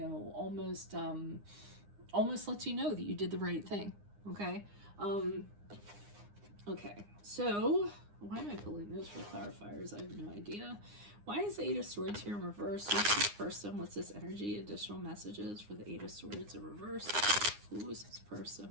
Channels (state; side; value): late; left; 9.7 ms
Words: almost lets you know that you did the right thing. Okay. Okay. So why am I pulling those for clarifiers? I have no idea. Why is the Eight of Swords here in reverse? Who's this person? What's this energy? Additional messages for the Eight of Swords in reverse. Who is this